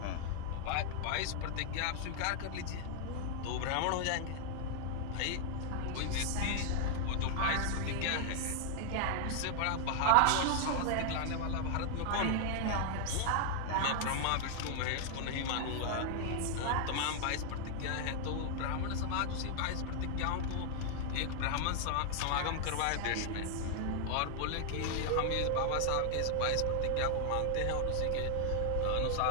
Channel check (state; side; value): different; both; correlation 0.00